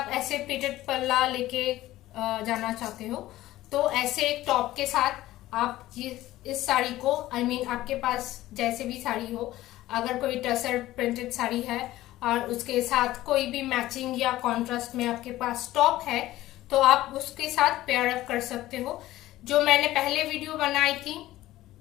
ऐसे प्लीटेड पल्ला लेके जाना चाहते हो तो ऐसे एक टॉप के साथ आप ये इस साड़ी को आई मीन आपके पास जैसे भी साड़ी हो, अगर कोई टसर प्रिंटेड साड़ी है और उसके साथ कोई भी मैचिंग या कॉन्ट्रास्ट में आपके पास टॉप है तो आप उसके साथ पेयर अप कर सकते हो। जो मैंने पहले वीडियो बनाई थी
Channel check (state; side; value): quieter; right; 15.7 dB